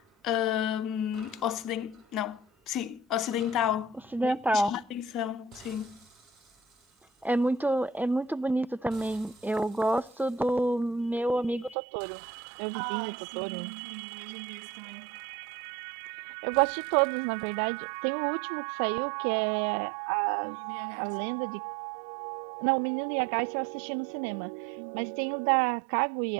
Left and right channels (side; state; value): left; drops out; at 11.8 s